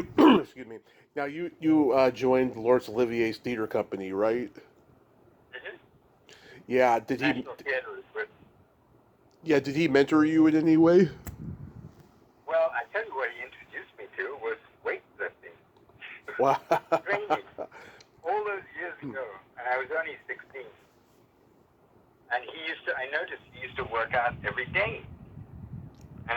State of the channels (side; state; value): both; identical; correlation 1.00